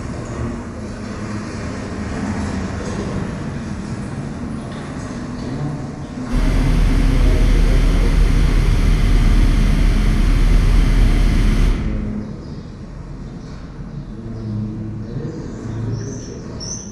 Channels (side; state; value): both; identical; correlation 1.00